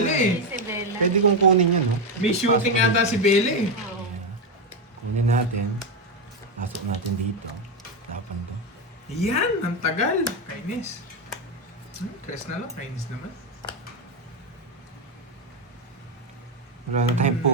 eh. Si Bella. Pwede kong kunin yan, no? May shooting ata si Bella eh. Oo. Kunin natin. Pasok natin dito. Tapan to. Yan, ang tagal. Kainis. Press na lang, kainis naman. Wala na tayong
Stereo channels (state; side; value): normal; both; correlation 0.08